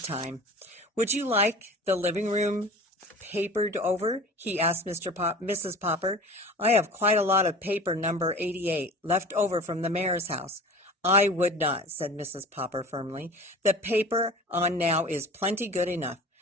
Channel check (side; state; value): both; normal; correlation 0.39